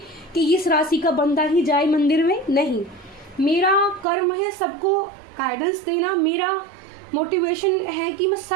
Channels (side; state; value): left; drops out; at 4.0 s